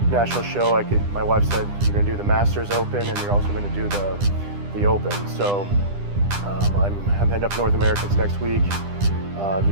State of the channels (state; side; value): late; left; 10 ms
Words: national show, my wife said, you're going to do the Masters Open and you're also going to do the Open. So I'm heading up North Americans next week,